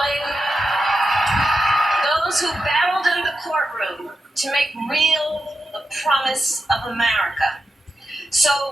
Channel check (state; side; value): normal; both; correlation 0.88